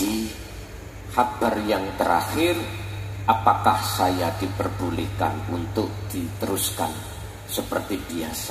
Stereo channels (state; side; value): identical; both; correlation 1.00